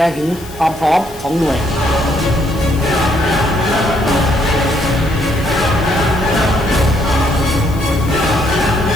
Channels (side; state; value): left; noise; hiss, 19 dB below the sound